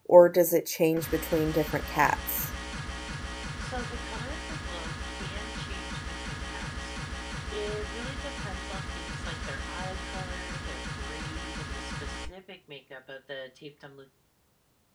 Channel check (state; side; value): identical; both; correlation 1.00